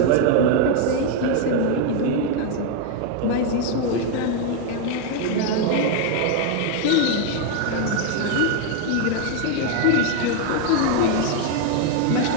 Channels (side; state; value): both; different; correlation 0.01